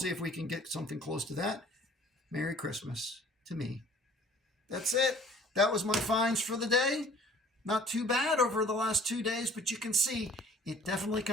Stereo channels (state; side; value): normal; both; correlation 0.51